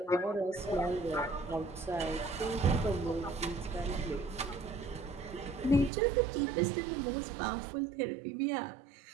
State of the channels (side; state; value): left; drops out; at 5.9 s